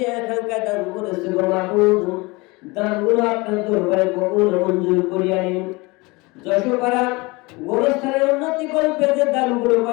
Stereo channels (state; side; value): quieter; right; 24.6 dB